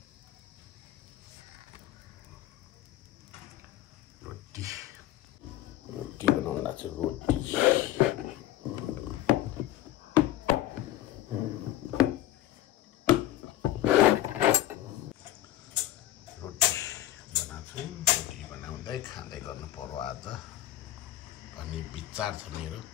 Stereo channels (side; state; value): right; quieter; 14.0 dB